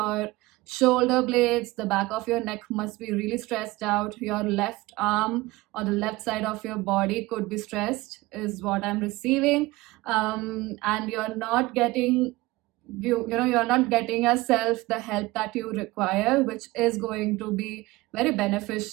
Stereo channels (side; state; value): left; quieter; 20.2 dB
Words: shoulder blades, the back of your neck must be really stressed out. Your left arm or the left side of your body could be stressed, is what I'm receiving. And you're not getting you're not getting yourself the help that you require, which is going to be very